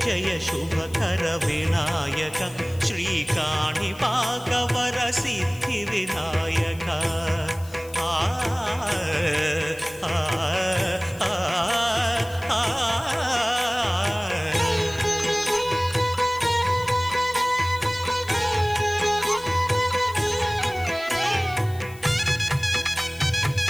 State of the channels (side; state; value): left; noise; hiss, 21 dB below the sound